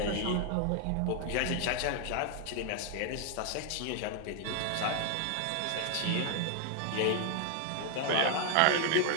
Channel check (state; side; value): different; both; correlation 0.00